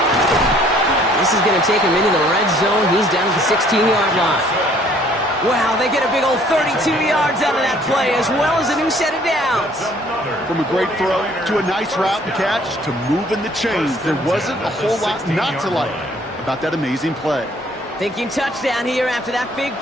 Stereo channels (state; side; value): normal; both; correlation 0.59